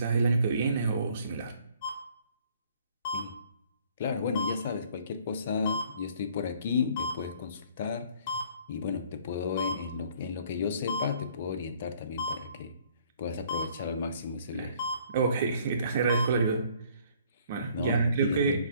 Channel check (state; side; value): inverted; both; correlation -0.59